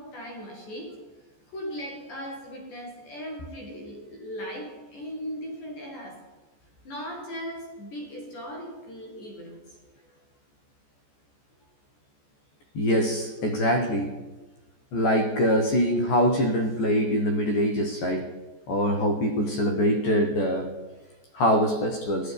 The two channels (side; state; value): right; late; 14 ms